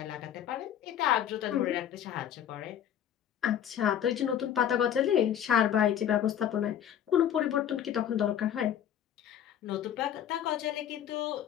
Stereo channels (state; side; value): quieter; right; 9.9 dB